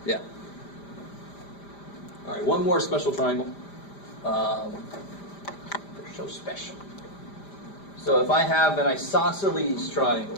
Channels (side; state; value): right; late; 5.0 ms